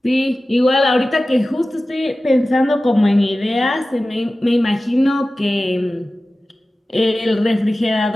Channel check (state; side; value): normal; both; correlation 0.96